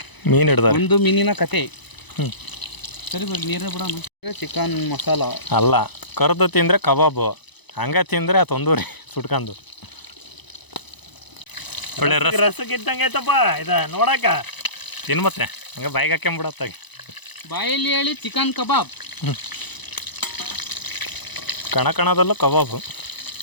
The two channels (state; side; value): late; right; 1.0 ms